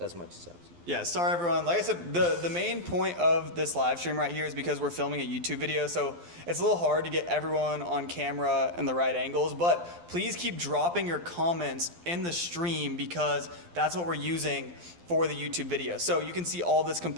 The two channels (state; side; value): late; left; 12 ms